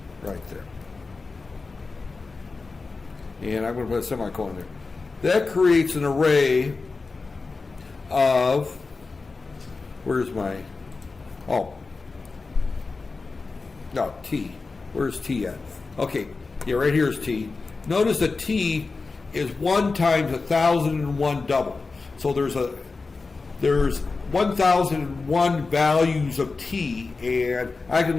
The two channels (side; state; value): right; quieter; 4.0 dB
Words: right there. And I'm going to put a semicolon there. That creates an array of, t. Where's t at? Okay, yeah, right here is t. Notice that t is 1 times 1,001 double. So there's 1,001 values of t, and I can